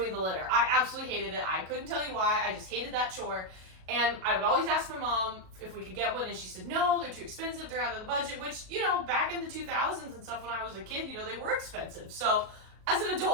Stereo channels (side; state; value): left; late; 37 ms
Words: the litter. I absolutely hated it. I couldn't tell you why. I just hated that chore. And I would always ask my mom if we could get one, and she said, no, they're too expensive, they're out of the budget, which, you know, back in the 2000s and stuff when I was a kid, you know, they were expensive. So as an